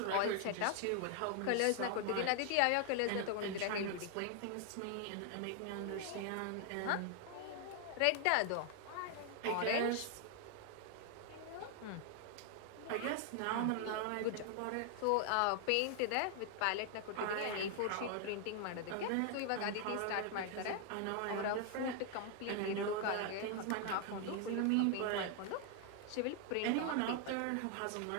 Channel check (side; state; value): both; different; correlation 0.00